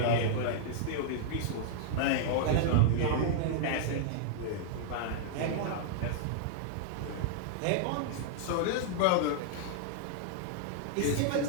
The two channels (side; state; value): both; different; correlation -0.01